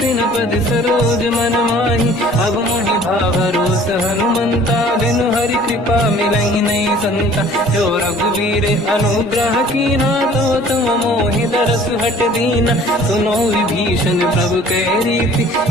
न पद सरोज मन माही। अब मोहि भावरोस हनुमंता बिनु हरि कृपा मिलहि नहीं संता। जो रघुवीर अनुग्रह कीना तो तुम मोहि दरस हट दीना। सुनो विभीषण प्रभु के रीति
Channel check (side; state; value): both; normal; correlation 0.51